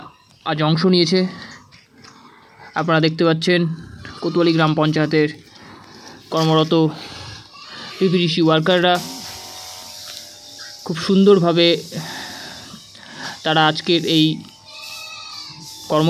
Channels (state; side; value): identical; both; correlation 1.00